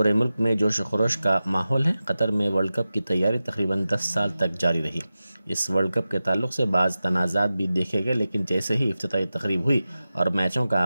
ملک میں جوش و خروش کا ماحول ہے۔ قطر میں ورلڈ کپ کی تیاری تقریباً 10 سال تک جاری رہی۔ اس ورلڈ کپ کے تعلق سے بعض تنازعات بھی دیکھے گئے، لیکن جیسے ہی افتتاحی تقریب ہوئی اور میچوں کا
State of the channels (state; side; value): inverted; both; correlation -0.94